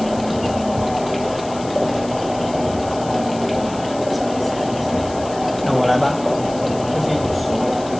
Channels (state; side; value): noise; left; hiss, 17 dB below the sound